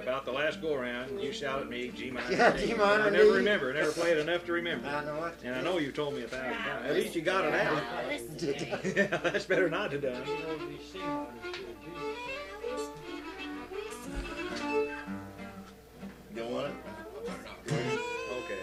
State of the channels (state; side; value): identical; both; correlation 1.00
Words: about the last go around, you shout at me G minor. Yeah, and D. G minor I and never D. remember, never played enough to remember. I know it. And I know you've told me 1,000 times. At least you got it out. Yeah, that's better not to done. You know, these C minors to a D. You want it? Okay,